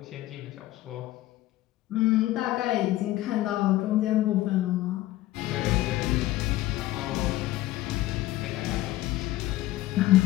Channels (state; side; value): quieter; right; 16.0 dB